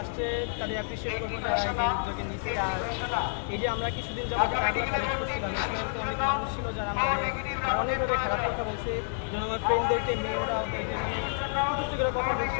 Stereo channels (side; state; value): right; silent; digital silence